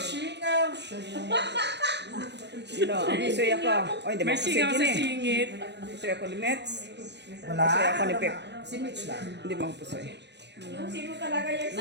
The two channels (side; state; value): left; late; 0.50 ms